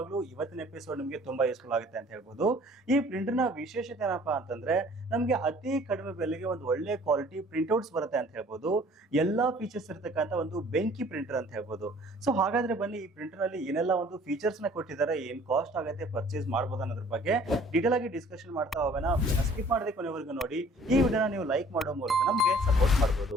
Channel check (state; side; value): normal; both; correlation 0.53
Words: ಇವತ್ತಿನ ಎಪಿಸೋಡ್ ನಿಮಗೆ ತುಂಬಾ ಯೂಸ್ಫುಲ್ ಆಗುತ್ತೆ ಅಂತ ಹೇಳ್ಬೋದು. ಈ ಪ್ರಿಂಟರ್ ನ ವಿಶೇಷತೆ ಏನಪ್ಪಾ ಅಂತಂದ್ರೆ, ನಮಗೆ ಅತಿ ಕಡಿಮೆ ಬೆಲೆಗೆ ಒಂದು ಒಳ್ಳೆ ಕ್ವಾಲಿಟಿ ಪ್ರಿಂಟ್ಔಟ್ಸ್ ಬರುತ್ತೆ ಅಂತ ಹೇಳ್ಬೋದು. ಎಲ್ಲಾ ಫೀಚರ್ಸ್ ಇರತಕ್ಕಂತ ಒಂದು ಬೆಂಕಿ ಪ್ರಿಂಟರ್ ಅಂತ ಹೇಳ್ಬೋದು. ಸೊ ಹಾಗಾದ್ರೆ ಬನ್ನಿ, ಈ ಪ್ರಿಂಟರ್ ನಲ್ಲಿ ಏನೆಲ್ಲ ಒಂದು ಫೀಚರ್ಸ್ ನ ಕೊಟ್ಟಿದ್ದಾರೆ, ಏನ್ ಕಾಸ್ಟ್ ಆಗುತ್ತೆ, ಪರ್ಚೇಸ್ ಮಾಡಬಹುದು ಅನ್ನೋದ್ರ ಬಗ್ಗೆ ಡೀಟೇಲ್ ಆಗಿ ಡಿಸ್ಕಷನ್ ಮಾಡ್ತಾ ಹೋಗೋಣ. ಸ್ಕಿಪ್ ಮಾಡದೆ ಕೊನೆವರೆಗೂ ನೋಡಿ. ಈ ವಿಡಿಯೋನ ನೀವು ಲೈಕ್ ಮಾಡೋ ಮೂಲಕ ನಮಗೆ ಸಪೋರ್ಟ್